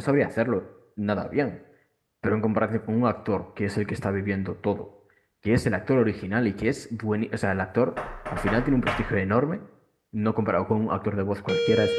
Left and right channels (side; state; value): both; identical; correlation 1.00